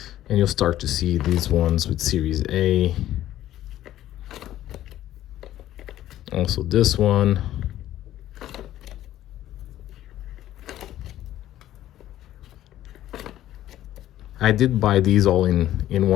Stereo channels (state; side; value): quieter; right; 13.2 dB